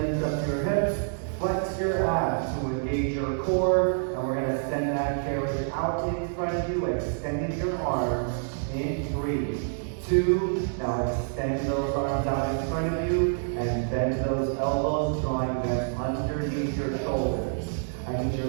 up your hips. Flex your abs to engage your core. And we're going to send that carriage out in front of you, extending your arms in 3, 2, now extend those arms out in front of you and bend those elbows, drawing them underneath your shoulders. I need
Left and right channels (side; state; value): left; silent; digital silence